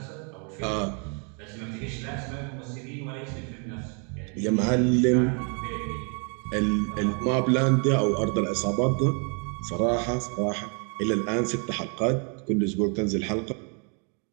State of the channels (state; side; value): quieter; left; 38.3 dB